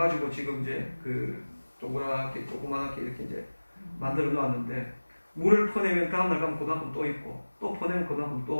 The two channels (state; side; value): inverted; both; correlation -1.00